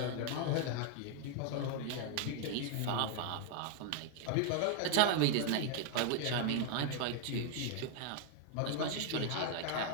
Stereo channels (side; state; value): both; different; correlation 0.00